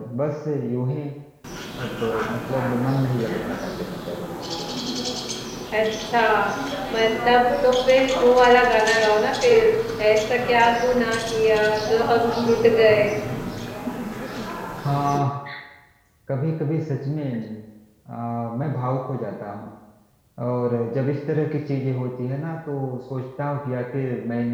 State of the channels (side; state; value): both; identical; correlation 1.00